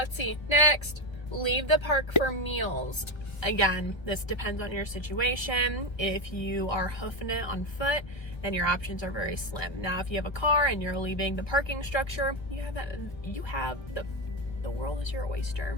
see. Next, leave the park for meals. Again, this depends on your situation. If you are hoofing it on foot, then your options are very slim. Now, if you have a car and you're leaving the parking structure, the world is your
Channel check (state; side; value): late; right; 1.3 ms